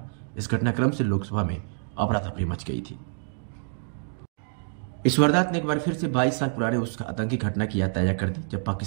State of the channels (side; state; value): left; silent; digital silence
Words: इस घटनाक्रम से लोकसभा में अफरा-तफरी मच गई थी। इस वारदात ने एक बार फिर से 22 साल पुराने उस आतंकी घटना की याद ताजा कर दी जब